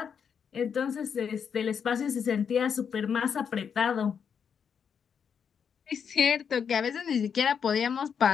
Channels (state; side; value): quieter; right; 7.1 dB